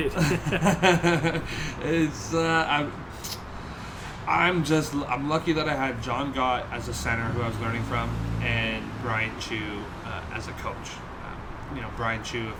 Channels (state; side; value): identical; both; correlation 1.00